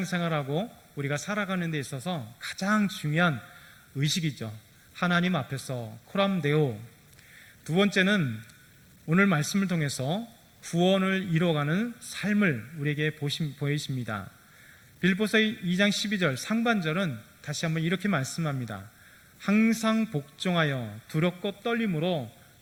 우리가 살아가는 데 있어서 가장 중요한 의식이죠. 하나님 앞에서 코람데오. 두 번째는 오늘 말씀을 통해서 구원을 이루어가는 삶을 우리에게 보이십니다. 빌립보서 2장 12절 상반절은 다시 한번 이렇게 말씀합니다. 항상 복종하여 두렵고 떨림으로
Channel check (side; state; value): both; identical; correlation 1.00